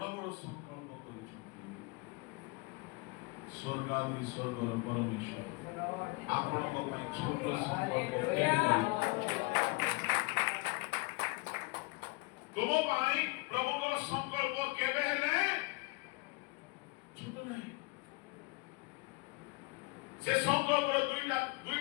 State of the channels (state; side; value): quieter; right; 26.5 dB